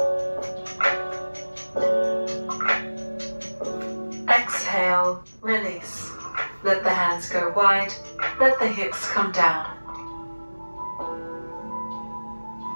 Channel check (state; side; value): inverted; both; correlation -1.00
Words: hips come down.